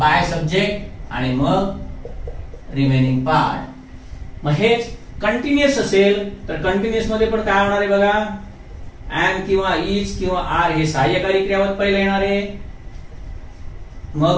सब्जेक्ट, आणि मग रिमेनिंग पार्ट. मग हेच कंटिन्युअस असेल तर कंटिन्युअस मध्ये पण काय होणार आहे बघा. एम किंवा इज किंवा आर हे सहाय्यकारी क्रियापद पहिलं येणार आहे. मग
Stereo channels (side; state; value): both; identical; correlation 1.00